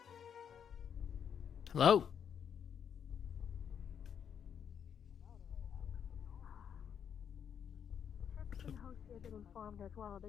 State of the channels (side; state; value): right; quieter; 8.0 dB